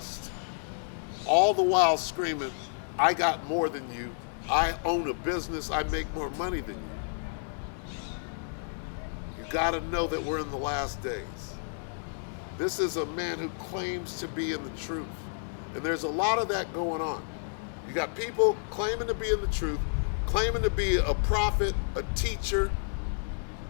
all the while screaming, I got more than you, I own a business, I make more money than you. You got to know that we're in the last days. This is a man who claims to be in the truth. And there's a lot of that going on. You got people claiming to be in the truth, claiming to be a prophet, a teacher,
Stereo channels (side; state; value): right; silent; digital silence